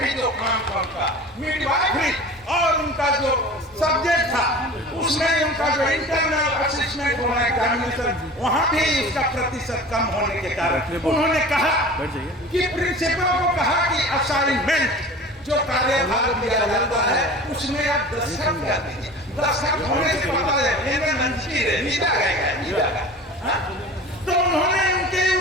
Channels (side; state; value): both; normal; correlation 0.38